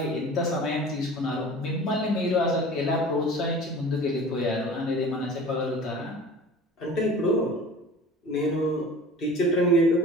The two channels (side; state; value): both; normal; correlation 0.41